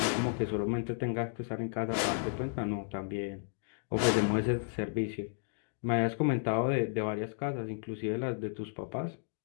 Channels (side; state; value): right; silent; digital silence